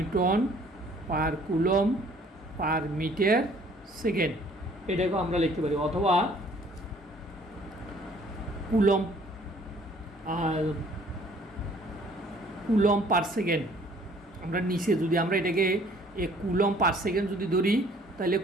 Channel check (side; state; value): both; normal; correlation 0.57